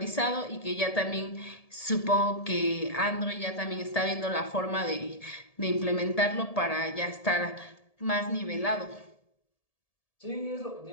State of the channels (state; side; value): late; right; 1.7 ms